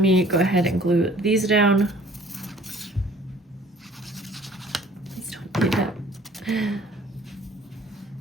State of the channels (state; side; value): normal; both; correlation 0.53